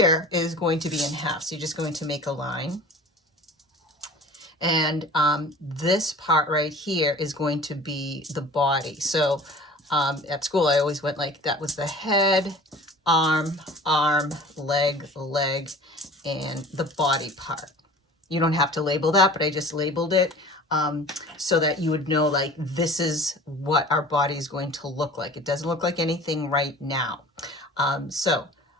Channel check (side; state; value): both; normal; correlation 0.43